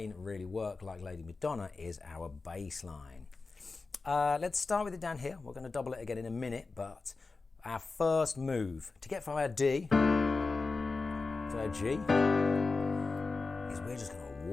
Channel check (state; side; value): quieter; right; 4.0 dB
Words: really work like Lady Madonna is our bass line. Let's start with it down here. We're going to double it again in a minute, but our first move to get from our D to our G is we're just going to